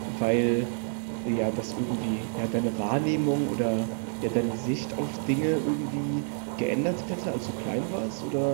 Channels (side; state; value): left; silent; 59 dB below the other